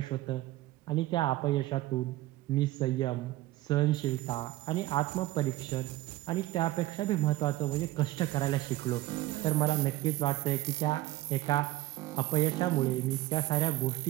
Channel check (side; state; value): left; quieter; 16.5 dB